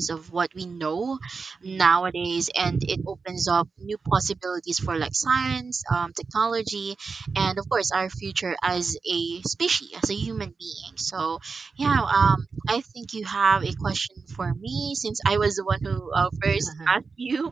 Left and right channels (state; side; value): quieter; left; 4.7 dB